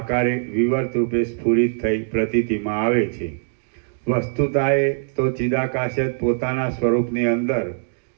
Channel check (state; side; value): silent; left; digital silence